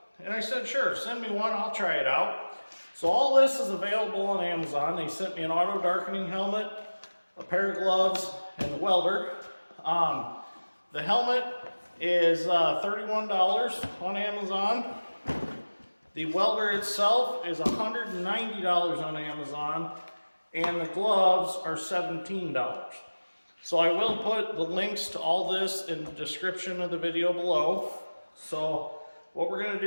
And I said, sure, send me one, I'll try it out. So all this is available on Amazon. They sent me an auto darkening helmet, a pair of gloves, and the welder. The helmet is $31 on Amazon. The welder itself is $190 on Amazon, and the gloves are $17. So I will put the links to all this in the description of the video below. So what we're going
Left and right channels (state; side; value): inverted; both; correlation -1.00